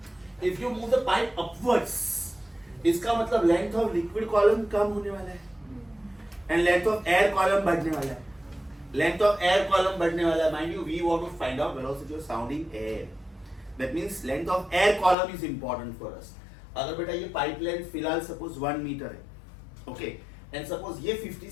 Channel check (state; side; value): drops out; right; at 15.2 s